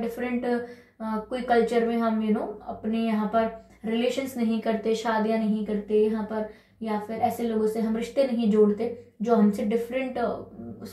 कोई कल्चर में हम अपने यहाँ पर रिलेशंस नहीं करते, शादियां नहीं करते यहाँ पर, या फिर ऐसे लोगों से हम रिश्ते नहीं जोड़ते जो हमसे डिफरेंट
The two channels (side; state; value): both; identical; correlation 1.00